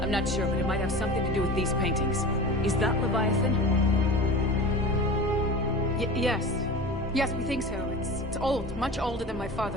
I'm not sure, but it might have something to do with these paintings. Is that Leviathan? Yes. Yes, we think so. It's old, much older than my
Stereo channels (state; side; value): normal; both; correlation 0.34